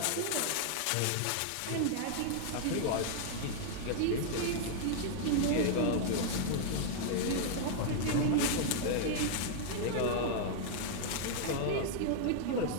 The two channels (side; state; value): both; different; correlation -0.01